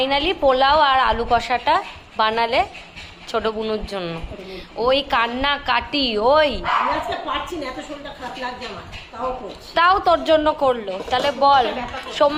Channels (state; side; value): identical; both; correlation 1.00